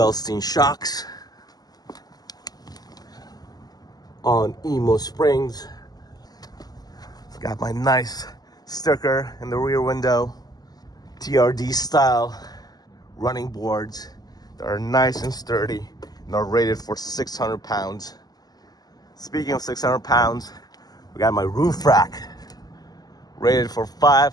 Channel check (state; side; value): late; right; 0.19 ms